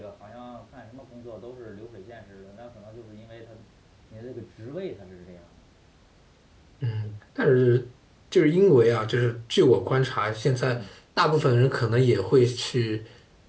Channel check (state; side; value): identical; both; correlation 1.00